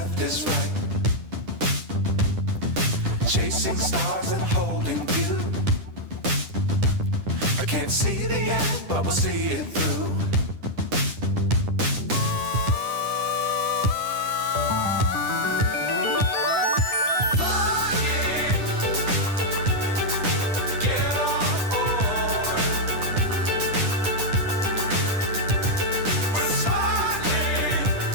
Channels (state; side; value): late; left; 10 ms